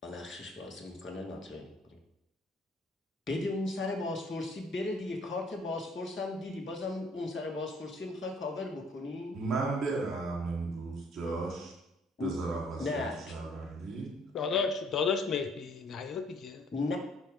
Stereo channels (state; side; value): normal; both; correlation 0.61